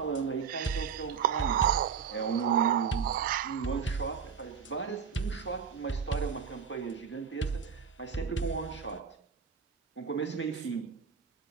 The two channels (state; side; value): quieter; left; 6.6 dB